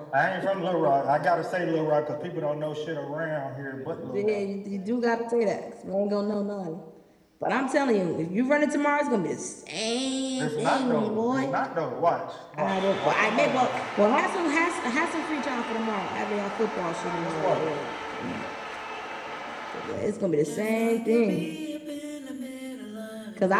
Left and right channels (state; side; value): identical; both; correlation 1.00